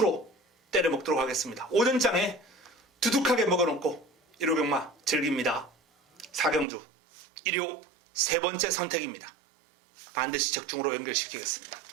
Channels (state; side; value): drops out; left; at 6.7 s